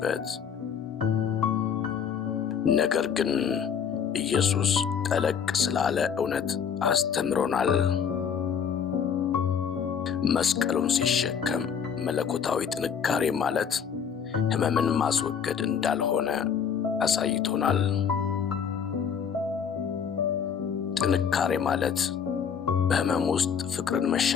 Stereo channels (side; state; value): right; quieter; 7.3 dB